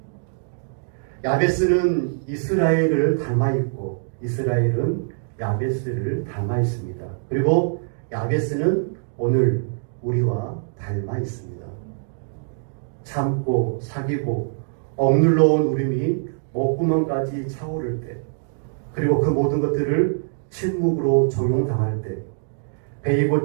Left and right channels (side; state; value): left; silent; digital silence